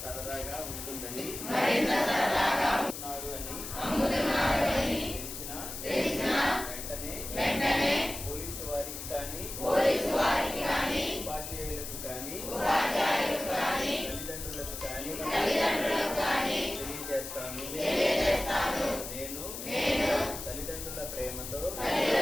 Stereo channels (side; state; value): left; noise; hiss, 8 dB below the sound